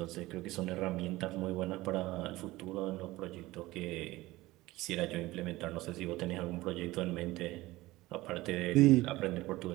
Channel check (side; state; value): left; quieter; 18.8 dB